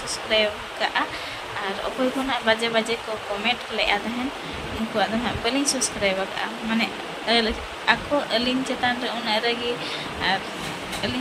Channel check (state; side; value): identical; both; correlation 1.00